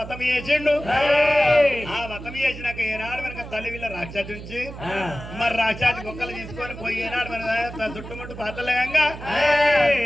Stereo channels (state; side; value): noise; right; hum, 12 dB below the sound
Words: చేసిండు. ఆ వ్రతం చేసినాక ఏనాడు మనకు తల్లి వీళ్ళ రాక్షసు నుంచి మరి రాక్షసు కుక్కలు తీసుకొని పోయి ఏనాడు మన చుట్టుముట్టు పాతలేయంగా